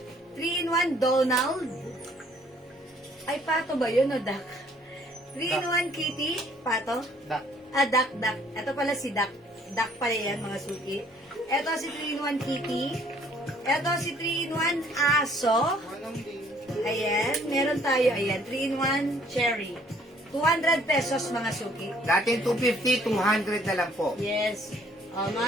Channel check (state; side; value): normal; both; correlation 0.61